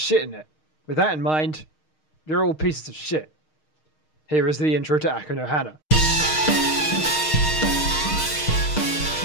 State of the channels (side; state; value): right; late; 6.4 ms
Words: in it. With that in mind, you're all pieces of shit. Here is the intro to Aku no Hana.